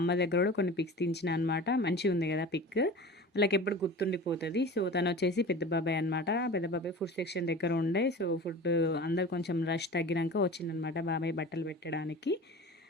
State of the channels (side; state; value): both; normal; correlation 0.36